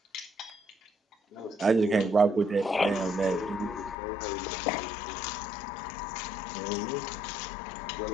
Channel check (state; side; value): drops out; right; at 4.0 s